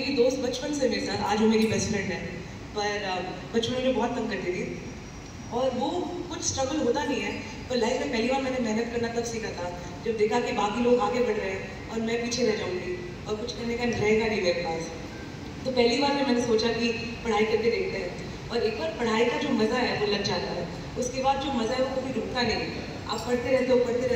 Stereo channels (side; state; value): both; identical; correlation 1.00